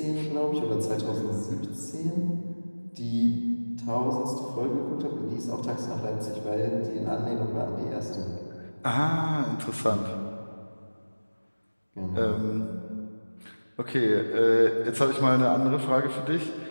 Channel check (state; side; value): inverted; both; correlation -1.00